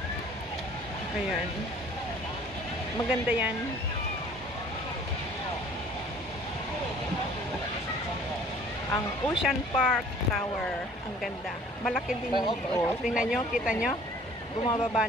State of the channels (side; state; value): both; normal; correlation 0.52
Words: Ayan. Maganda yan. Ang Ocean Park Tower. Ang ganda. Malaki din. Oh, tingnan nyo, kita nyo. Bumababa